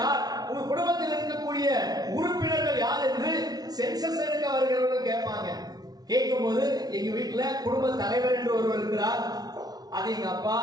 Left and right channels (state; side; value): late; left; 0.19 ms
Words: யார், உங்க குடும்பத்தில் இருக்கக்கூடிய உறுப்பினர்கள் யார் என்று சென்சஸ் எடுக்க வருகிறவர்கள் கேட்பாங்க. கேட்கும் போது எங்க வீட்டுல குடும்ப தலைவர் என்று ஒருவர் இருக்கிறார், அது எங்க அப்பா,